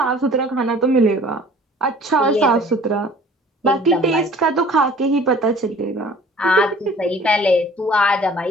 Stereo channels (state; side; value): normal; both; correlation 0.50